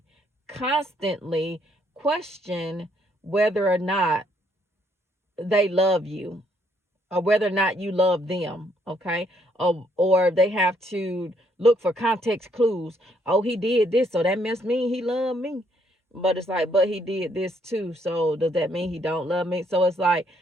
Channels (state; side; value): normal; both; correlation 0.70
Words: constantly question whether or not they love you, or whether or not you love them, okay? Or they have to look for context clues. Oh, he did this, so that must mean he loved me. But it's like, but he did this too, so does that mean he don't love me? So it's like,